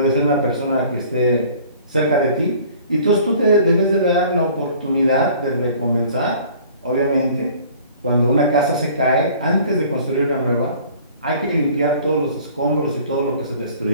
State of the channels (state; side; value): inverted; both; correlation -0.50